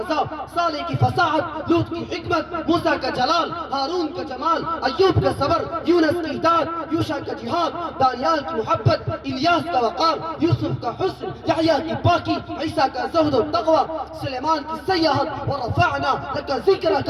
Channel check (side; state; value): both; identical; correlation 1.00